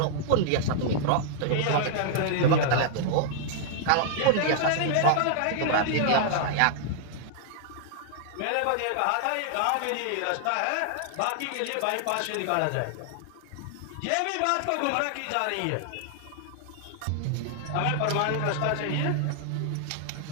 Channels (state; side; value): different; both; correlation -0.01